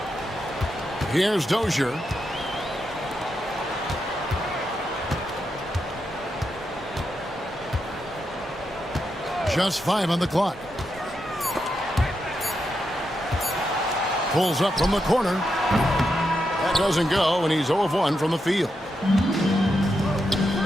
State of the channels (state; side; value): normal; both; correlation 0.84